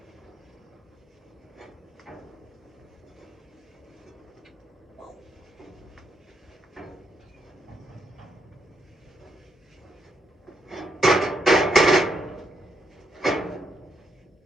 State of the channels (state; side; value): normal; both; correlation 0.78